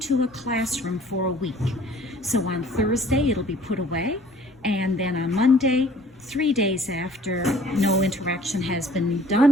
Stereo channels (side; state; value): both; normal; correlation 0.54